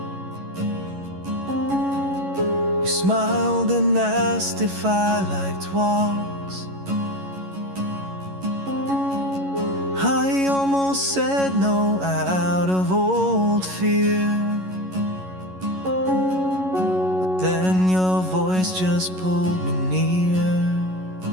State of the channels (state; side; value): late; left; 11 ms